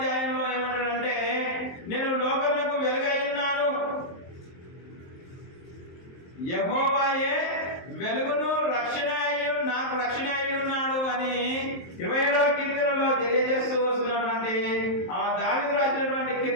ఏమంటాడంటే, నేను లోకమునకు వెలుగై ఉన్నాను. యెహోవాయే వెలుగును రక్షణ నాకు రక్షణ అయి ఉన్నాడు అని 27వ కీర్తనలో తెలియజేస్తూ వస్తున్నటువంటి దావీదు రాసినటువంటి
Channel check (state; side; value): late; right; 23 ms